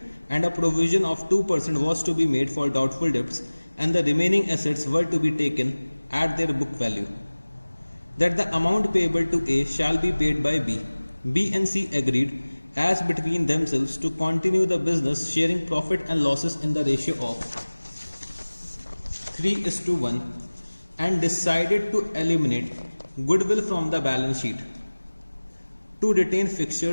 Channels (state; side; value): inverted; both; correlation -1.00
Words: and a provision of 2% was to be made for doubtful debts and the remaining assets were to be taken at their book value. That the amount payable to A shall be paid by B. B and C agreed as between themselves to continue the business sharing profit and losses in the ratio of 3:1 and decided to eliminate goodwill from the balance sheet, to retain